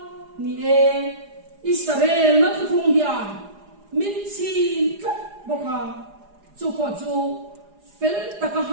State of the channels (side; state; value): left; late; 4.9 ms